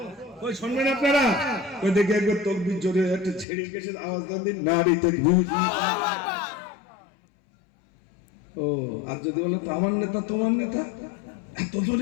ওই শুনবেন আপনারা? ওই দেখে একবার তাকবীর জোরে একটা ছেড়ে গেছে আওয়াজ দেন দিন, নারী তাকবীর। ও আর যদি বলো তো আমার নেতা তোমার নেতা, এত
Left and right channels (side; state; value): right; drops out; at 3.5 s